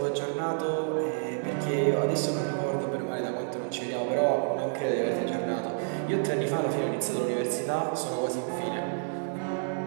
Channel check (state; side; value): silent; left; 58 dB below the other